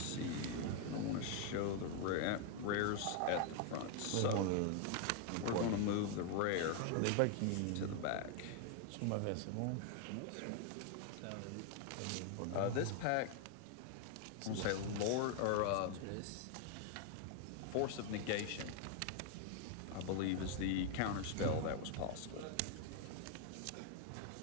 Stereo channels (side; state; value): both; different; correlation 0.00